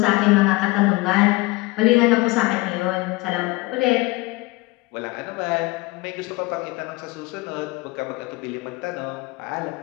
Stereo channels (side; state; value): right; quieter; 22.3 dB